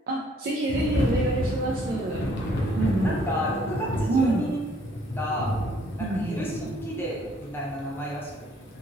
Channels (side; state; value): both; normal; correlation 0.63